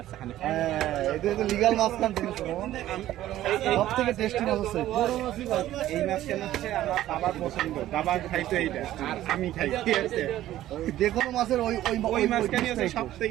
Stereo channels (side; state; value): left; quieter; 13.8 dB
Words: এখানে। হ্যাঁ, এটা লিগাল মাছ কান জিনিস সব থেকে টেস্টি মাছ আছে। এই মাছ কেন হচ্ছে আমার বাবার পছন্দ, বাবা খাইতো এইটা আর আমি খাই, ঠিক আছে? যে কোনো মাছের ওই ওই ওই মাছ কেন হচ্ছে সব